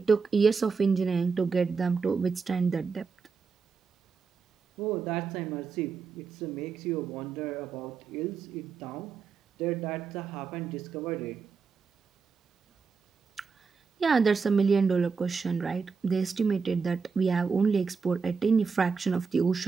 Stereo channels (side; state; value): left; quieter; 5.3 dB